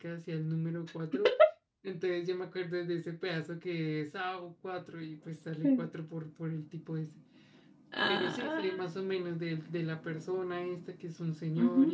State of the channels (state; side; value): identical; both; correlation 1.00